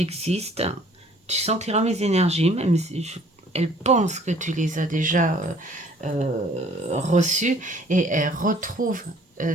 Tu sentiras mes énergies, même si elle pense que tu les as déjà reçues, et elle retrouve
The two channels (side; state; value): both; normal; correlation 0.56